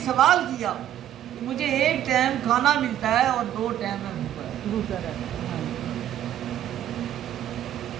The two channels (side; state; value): left; quieter; 11.6 dB